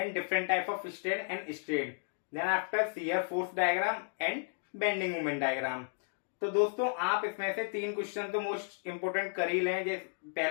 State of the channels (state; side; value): silent; right; digital silence